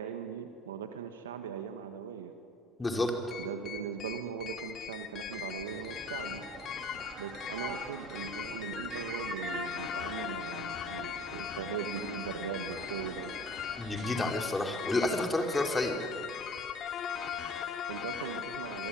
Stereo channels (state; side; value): normal; both; correlation 0.46